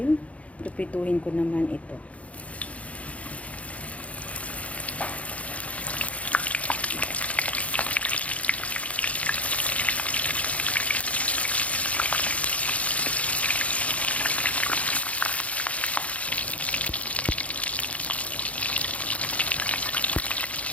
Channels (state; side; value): late; right; 0.066 ms